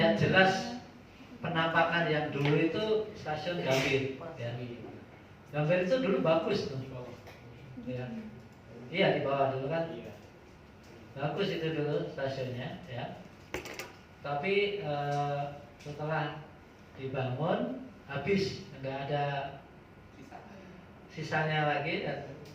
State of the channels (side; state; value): both; identical; correlation 1.00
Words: jelas penampakan yang dulu itu stasiun Gambir. Ya. Gambir itu dulu bagus tuh. Ya. Iya di bawah dulu kan. Bagus itu dulu stasiunnya. Ya. Tapi setelah dibangun habis, nggak ada sisanya lagi. Dan